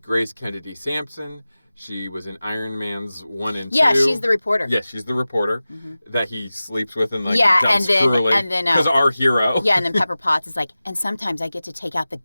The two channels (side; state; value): both; inverted; correlation -0.96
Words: Grace Kennedy Sampson. She was in Iron Man's 1 and 2. Yeah, she's the reporter. Yes, she's the reporter that he sleeps with and dumps and then because our hero. Yeah, and then Pepper Potts is like, and sometimes I get to take out the